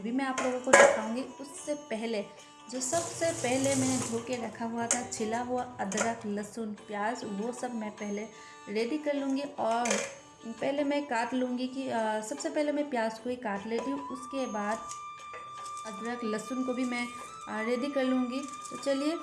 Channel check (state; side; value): identical; both; correlation 1.00